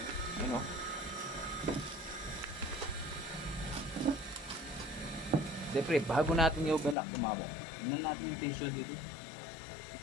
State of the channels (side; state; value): right; drops out; at 7.0 s